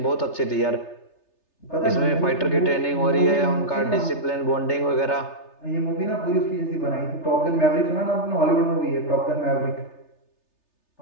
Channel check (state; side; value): late; right; 3.3 ms